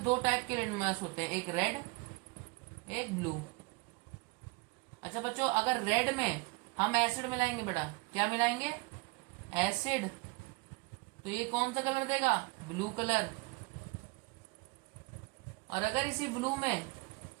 दो टाइप के लिटमस होते हैं, एक रेड एक ब्लू। अच्छा बच्चों, अगर रेड में हम एसिड मिलाएंगे बेटा, क्या मिलाएंगे, एसिड, तो ये कौन सा कलर देगा, ब्लू कलर। और अगर इसी ब्लू में,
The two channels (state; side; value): quieter; left; 26.4 dB